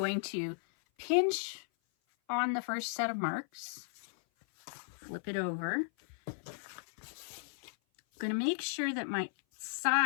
to pinch on the first set of marks, flip it over. I'm going to make sure that my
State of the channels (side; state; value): right; silent; 54 dB below the other